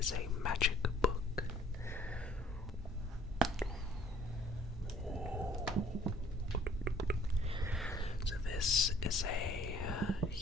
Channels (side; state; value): both; normal; correlation 0.58